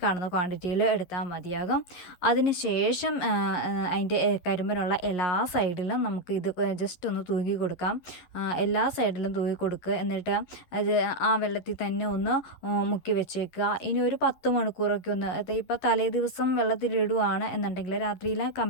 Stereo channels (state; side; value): late; right; 11 ms